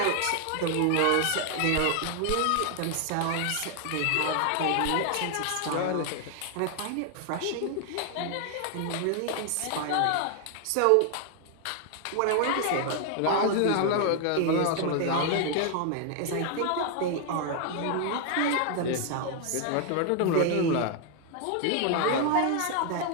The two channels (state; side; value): different; both; correlation 0.00